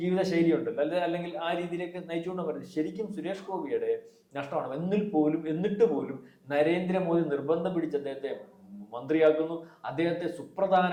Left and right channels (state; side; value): identical; both; correlation 1.00